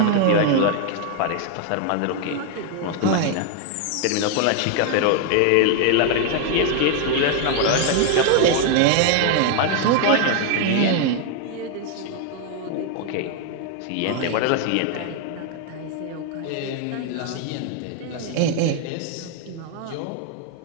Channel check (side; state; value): both; different; correlation 0.00